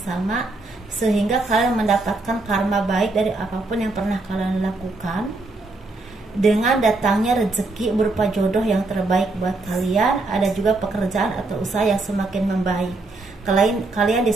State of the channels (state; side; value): quieter; left; 3.2 dB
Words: sehingga kalian mendapatkan karma baik dari apapun yang pernah kalian lakukan. Dengan datangnya rezeki berupa jodoh yang terbaik buat kalian, ada juga pekerjaan atau usaha yang semakin membaik. Kalian